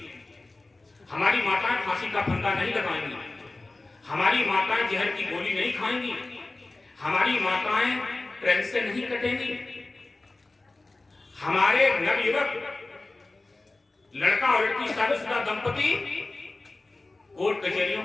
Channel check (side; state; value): right; quieter; 3.1 dB